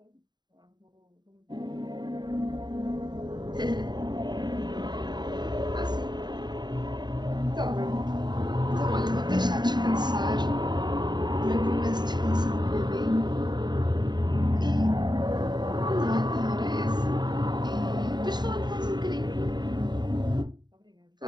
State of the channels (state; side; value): late; left; 0.21 ms